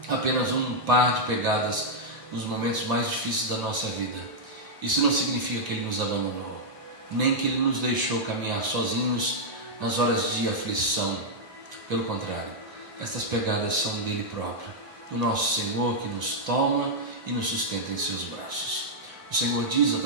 apenas um par de pegadas nos momentos mais difíceis da nossa vida, isso não significa que Ele nos abandonou, nem que Ele nos deixou caminhar sozinhos nas horas de aflição. Pelo contrário, estas pegadas são dele próprio, do nosso Senhor, que nos toma e nos sustenta em seus braços. O Senhor diz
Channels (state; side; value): late; left; 1.7 ms